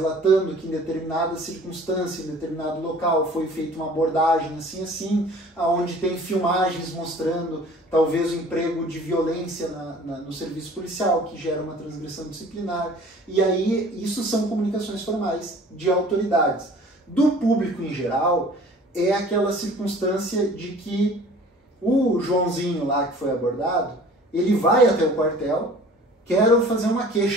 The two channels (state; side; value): normal; both; correlation 0.48